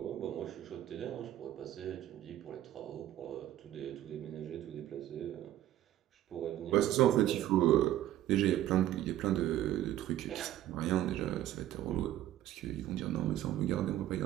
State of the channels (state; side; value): quieter; left; 13.2 dB